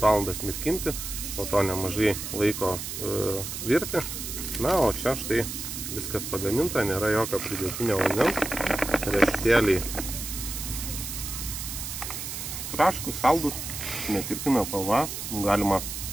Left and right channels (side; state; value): right; noise; hiss, 6 dB below the sound